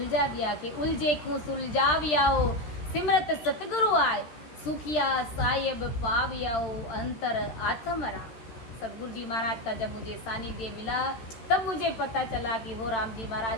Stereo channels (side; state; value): right; late; 13 ms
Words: दिया कि उलझे को सुलझावियाओ, सिमरत सतगुरु आए, सुखिया साहेब पावियाओ, अंतर आत्मरा। सदगुरु जी महाराज का जब मुझे सानिध्य मिला तब मुझे पता चला कि वो राम जी